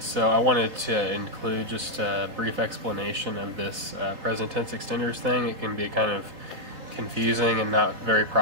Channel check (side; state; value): left; late; 3.5 ms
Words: so I wanted to include just a brief explanation of this present tense extenders thing. It can be kind of confusing and not very